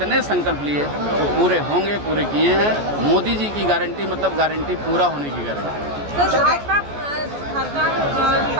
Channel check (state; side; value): late; left; 14 ms